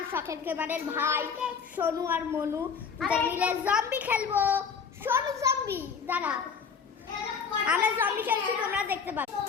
গেমারের ভাই সোনু আর মনু মিলে জম্বি খেলবো। সোনু জম্বি দাঁড়া, আমরা জম্বি খেলছি, তোমরা দেখতে পাবে।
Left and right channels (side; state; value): right; quieter; 6.1 dB